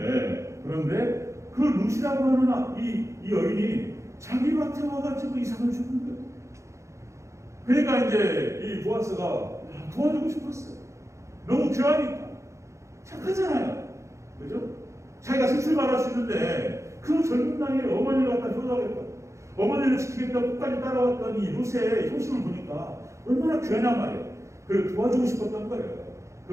그 룻이라고 하는 이 여인이 자기 밭에 와가지고 이삭을 주는 거예요. 그러니까 이제 이 보아스가 도와주고 싶었어요. 너무 귀하니까. 착하잖아요. 그죠? 자기가 새 출발할 수 있는데 그 젊은 나이에 어머니를 갖다 효도하겠다. 어머니를 지키겠다 끝까지 따라왔던 이 룻의 효심을 보니까 얼마나 귀하냐 말이에요. 그걸 도와주고 싶었던 거예요.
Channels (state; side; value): late; left; 0.14 ms